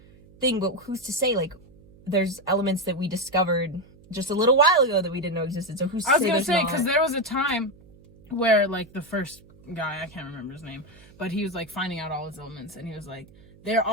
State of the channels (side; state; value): right; noise; hum, 25 dB below the sound